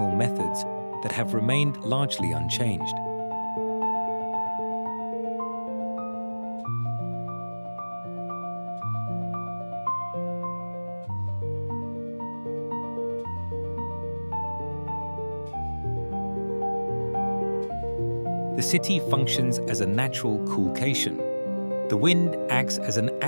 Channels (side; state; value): both; inverted; correlation -1.00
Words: methods that have remained largely unchanged. The city functions as a natural coolcation. The wind acts as an